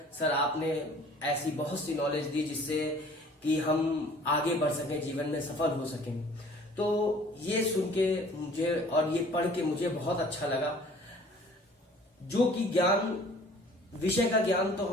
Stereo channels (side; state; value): both; normal; correlation 0.51